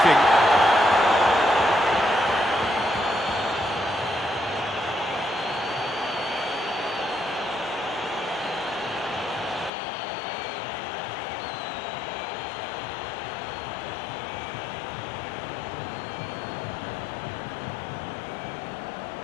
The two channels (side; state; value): right; drops out; at 9.7 s